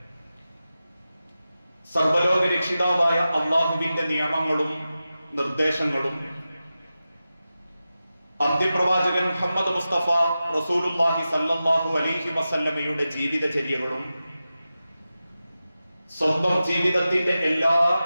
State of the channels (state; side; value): inverted; both; correlation -0.93